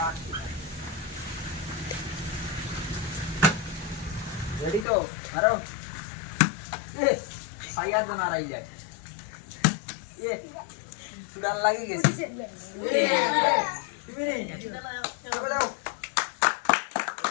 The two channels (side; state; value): right; drops out; at 4.9 s